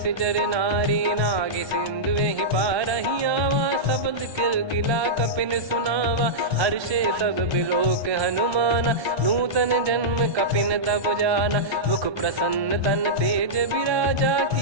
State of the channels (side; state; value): left; late; 1.3 ms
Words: नारी। नागे सिंधु ही पारहि आवा, शब्द किलकिला कपिन सुनावा। हर्षे सब बिलोक हनुमाना, नूतन जन्म कपिन तब जाना। मुख प्रसन्न तन तेज विराजा,